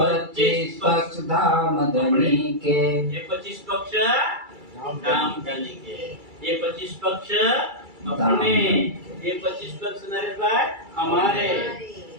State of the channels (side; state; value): left; late; 2.3 ms